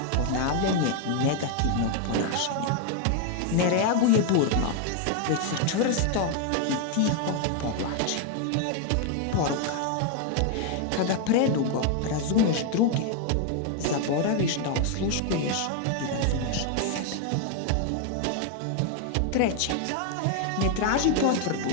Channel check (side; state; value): both; different; correlation 0.01